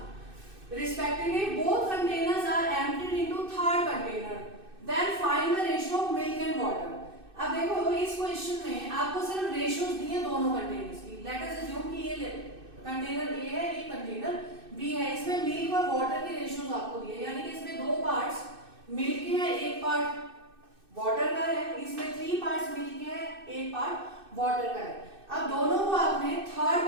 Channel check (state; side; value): late; left; 2.6 ms